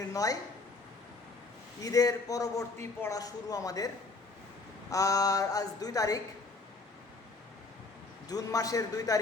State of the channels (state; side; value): quieter; right; 3.7 dB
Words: ঈদের পরবর্তী পড়া শুরু আমাদের। আর আজ 2 তারিখ, জুন মাসের 2